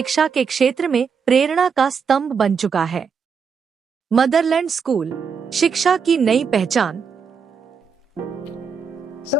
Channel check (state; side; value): quieter; left; 6.1 dB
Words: के क्षेत्र में प्रेरणा का स्तंभ बन चुका है। मदरलैंड स्कूल, शिक्षा की नई पहचान।